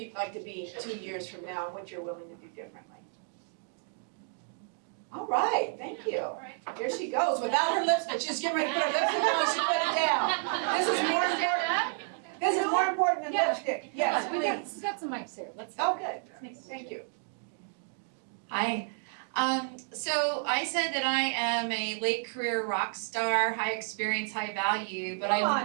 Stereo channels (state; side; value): silent; left; 57 dB below the other